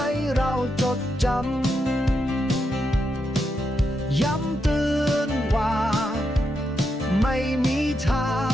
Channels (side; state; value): both; normal; correlation 0.83